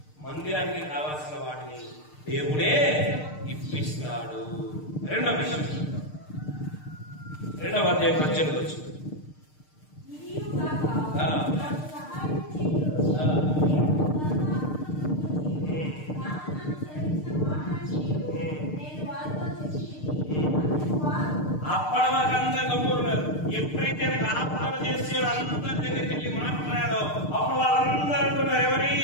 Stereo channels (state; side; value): late; right; 6.6 ms